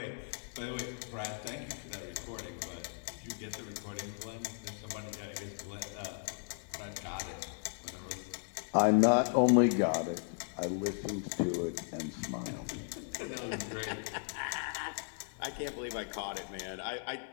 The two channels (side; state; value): right; silent; 53 dB below the other